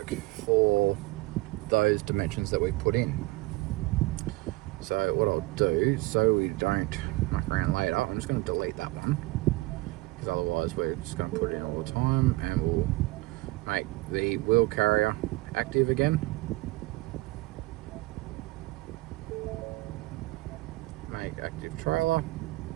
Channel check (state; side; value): quieter; left; 21.0 dB